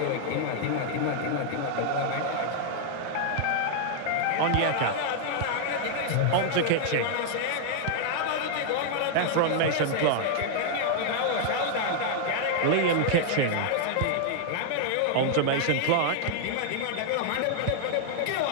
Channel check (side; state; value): both; different; correlation -0.01